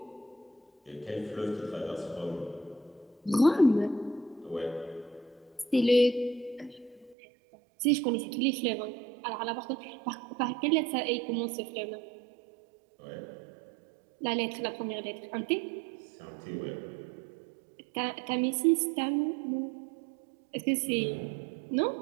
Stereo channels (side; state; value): left; drops out; at 7.2 s